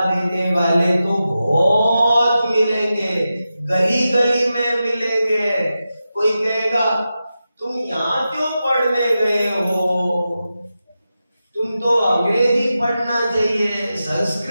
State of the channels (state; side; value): inverted; both; correlation -0.91